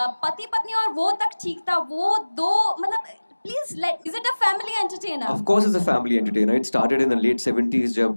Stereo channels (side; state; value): both; inverted; correlation -1.00